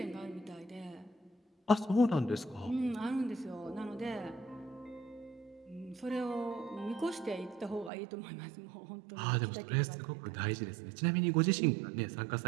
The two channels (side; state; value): left; drops out; at 7.9 s